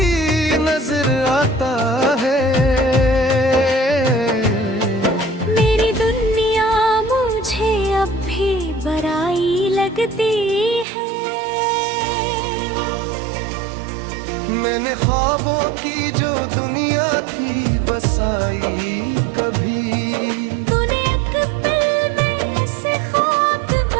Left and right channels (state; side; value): drops out; left; at 10.9 s